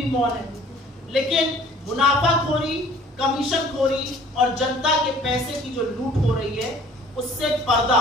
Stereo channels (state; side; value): normal; both; correlation 0.52